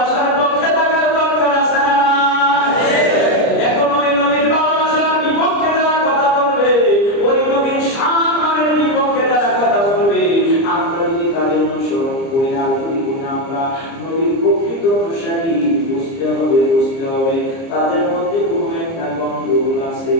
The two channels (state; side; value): late; right; 30 ms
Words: পক্ষে থাকার দরকার আছে না? এখন ওই নবীর ভালোবাসার বিপক্ষে যারা কথা বলবে, ওই নবীর সম্মানের বিপক্ষে যারা কথা বলবে, আমরা যদি তাদের অনুসরণ করি আর যদি আমরা নবীর প্রকৃত অনুসারী, বুঝতে হবে তাদের মধ্যে কোনো একটা গন্ডগোল আছে।